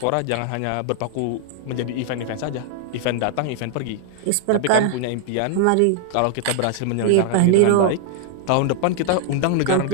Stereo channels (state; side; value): different; both; correlation 0.00